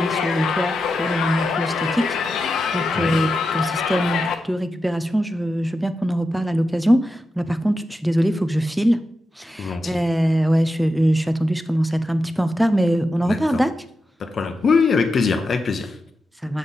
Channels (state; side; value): normal; both; correlation 0.89